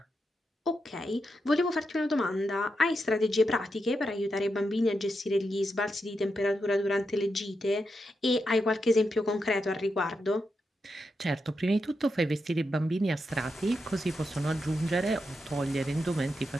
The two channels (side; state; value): both; normal; correlation 0.85